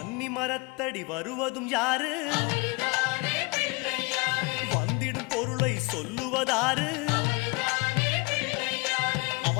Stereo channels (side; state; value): right; quieter; 28.0 dB